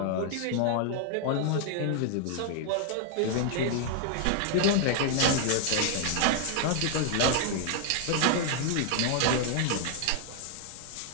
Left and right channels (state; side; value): different; both; correlation 0.00